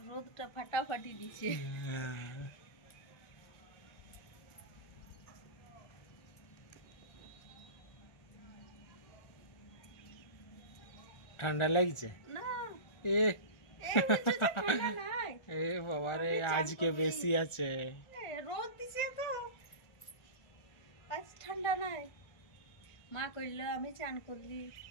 রোদটা ফাটাফাটি দিছে। ঠান্ডা লাগছে না এ এই বুঝছো যে ঠান্ডা নাই। এ বাবা রে আজকে বেশি আছে। রোদ দিছে তো আজ ঠান্ডা নাই। মা কইল আমি চান করলি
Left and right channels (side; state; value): right; late; 1.4 ms